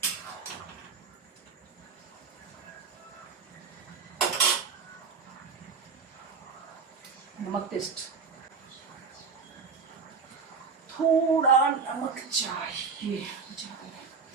नमक टेस्ट, थोड़ा नमक चाहिए।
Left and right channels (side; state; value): left; quieter; 5.2 dB